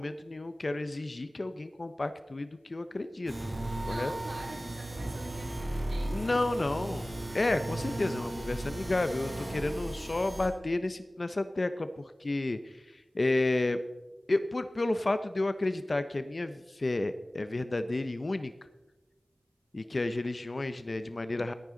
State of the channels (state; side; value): normal; both; correlation 0.98